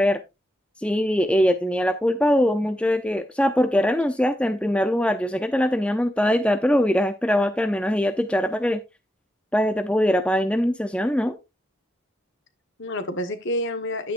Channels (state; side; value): normal; both; correlation 0.85